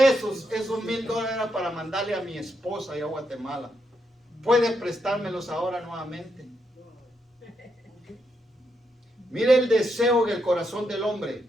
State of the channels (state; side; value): normal; both; correlation 0.81